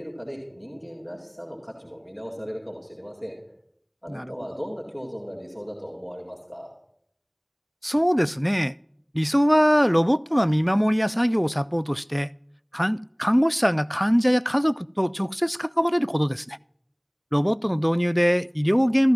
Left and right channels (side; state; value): both; identical; correlation 1.00